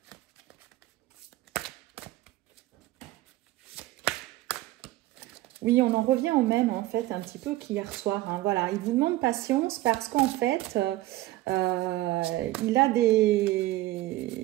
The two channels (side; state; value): left; quieter; 16.9 dB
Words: Oui, on en revient au même, en fait, un petit peu qu'hier soir. Hein. Voilà, il vous demande patience parce qu'en fait, il a